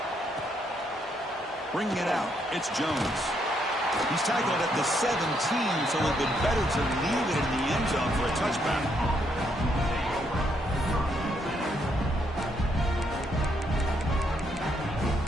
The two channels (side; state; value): both; normal; correlation 0.74